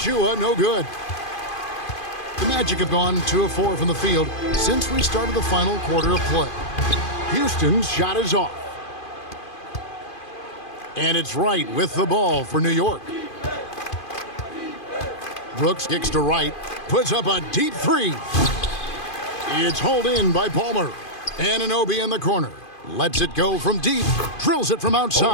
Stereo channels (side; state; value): right; late; 2.5 ms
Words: no good. The Magic have gone 2 of 4 from the field since we started the final quarter of play. Houston's shot is off. And it's Wright with the ball for New York. Brooks kicks to Wright, puts up a deep 3. It's hauled in by Palmer. Anunoby in the corner. Lets it go from deep, drills it from